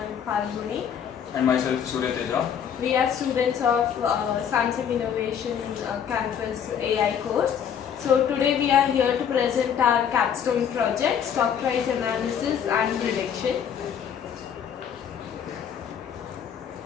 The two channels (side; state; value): right; quieter; 8.2 dB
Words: Falguni. And myself, Surya Teja. We are students of Samsung Innovation Campus AI course. So today we are here to present our capstone project, stock price analysis and prediction.